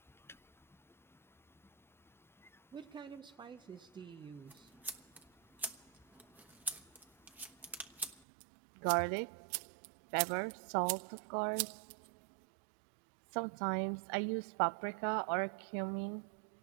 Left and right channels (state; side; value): drops out; left; at 8.2 s